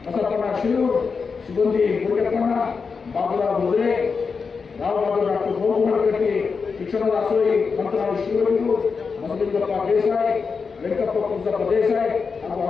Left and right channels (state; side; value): quieter; right; 5.2 dB